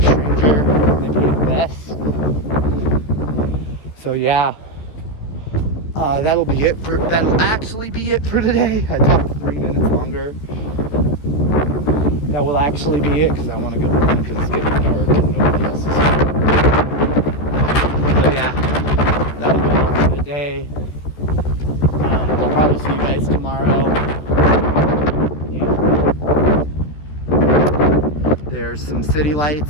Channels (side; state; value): right; late; 13 ms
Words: ranger, maybe the best. So yeah, that'll actually be it for today. I talked 3 minutes longer. That will actually be it, because I want to go home because it's getting dark and nobody else is here. So yeah, that'll be all for today. I'll probably see you guys tomorrow. Yeah. There's some city